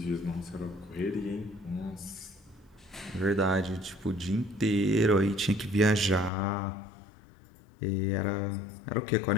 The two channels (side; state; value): right; drops out; at 6.3 s